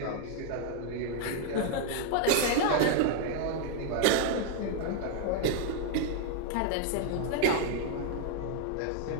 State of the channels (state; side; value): different; both; correlation 0.00